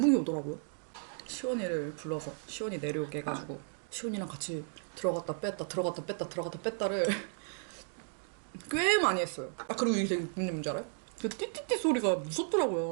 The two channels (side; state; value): left; silent; 55 dB below the other